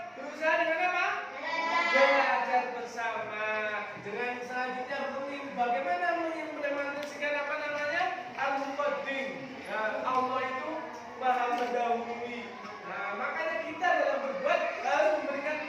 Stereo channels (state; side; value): identical; both; correlation 1.00